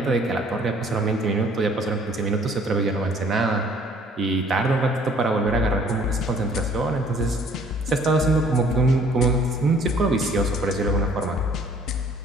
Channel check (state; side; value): normal; both; correlation 0.57